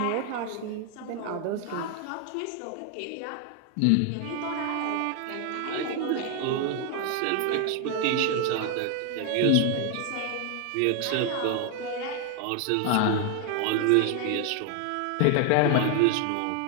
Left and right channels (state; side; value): different; both; correlation 0.00